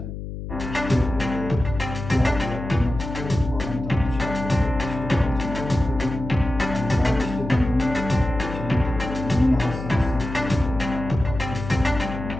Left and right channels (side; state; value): left; noise; hum, 8 dB below the sound